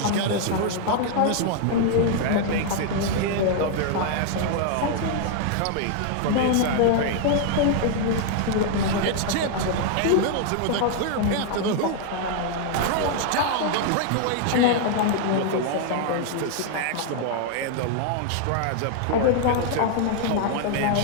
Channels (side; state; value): both; different; correlation 0.00